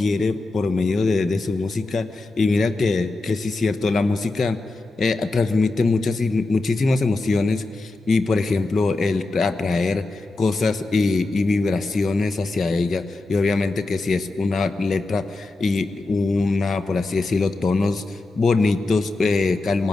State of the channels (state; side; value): quieter; right; 3.2 dB